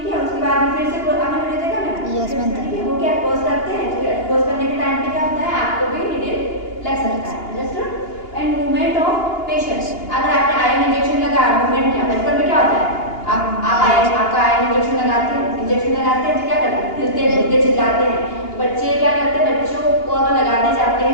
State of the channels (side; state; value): right; late; 2.8 ms